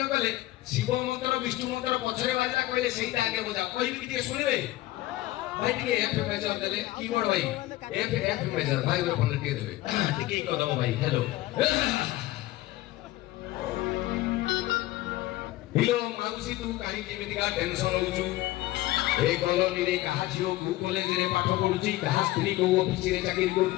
କଲେ ଶିବ ମନ୍ତ୍ର ବିଷ୍ଣୁ ମନ୍ତ୍ର ପଛରେ ବାଜିଲା କହିଲେ ସେଇଟା ଆଗେ ବଜାଅ କହିବି ଟିକେ ଶୁଣିବେ ଭାଇ ଟିକେ ଏଫ ମେଜର ଦେଲେ କିବୋର୍ଡ ଭାଇ ଏଫ ମେଜର ଭାଇ ଉପରେ ଟିକେ ଦେବେ ଟିକେ କଦମ ଭାଇ ହ୍ୟାଲୋ ହିଲୋ ମାଉସୀ ତୁ କାହିଁକି ଏମିତିକା ଟେନସନ ହଉଛୁ ଏ କଲୋନୀରେ କାହା ଝିଅ କୋଉ କଲେଜରେ ପାଠ ପଢୁଛି କାହା ସ୍ତ୍ରୀ କୋଉ ଅଫିସରେ ଚାକିରି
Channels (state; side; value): quieter; right; 17.1 dB